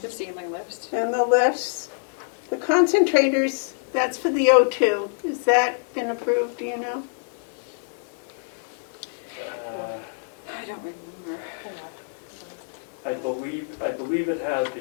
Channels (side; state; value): right; silent; digital silence